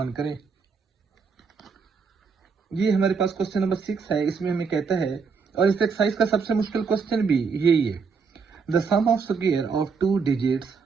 करें। ये हमारे पास क्वेश्चन नंबर 6 है। इसमें हमें कहता है, और इस एक्सरसाइज का सबसे मुश्किल क्वेश्चन भी यही है, the sum of square of 2 digits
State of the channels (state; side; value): quieter; left; 5.3 dB